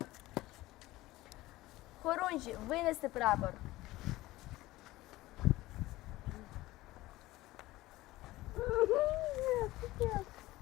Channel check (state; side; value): quieter; right; 17.9 dB